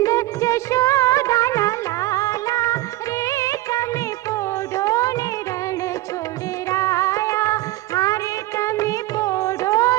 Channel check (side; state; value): left; quieter; 17.5 dB